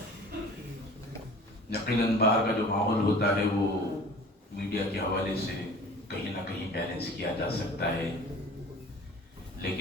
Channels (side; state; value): both; normal; correlation 0.44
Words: یقیناً باہر کا جو ماحول ہوتا ہے وہ میڈیا کے حوالے سے کہیں نہ کہیں بیلنس کیا جا سکتا ہے،